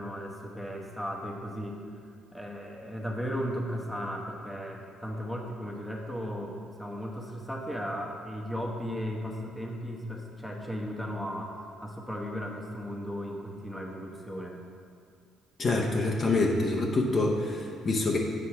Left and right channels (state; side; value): normal; both; correlation 0.78